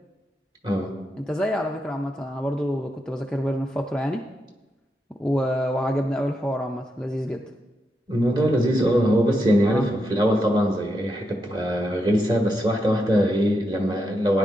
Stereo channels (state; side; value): normal; both; correlation 0.83